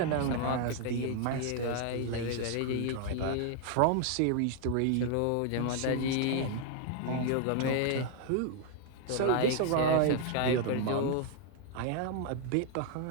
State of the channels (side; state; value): both; different; correlation 0.00